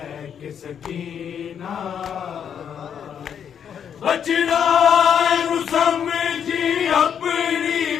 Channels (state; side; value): quieter; right; 8.2 dB